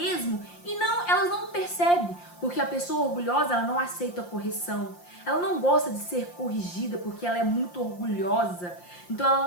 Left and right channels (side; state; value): right; late; 5.7 ms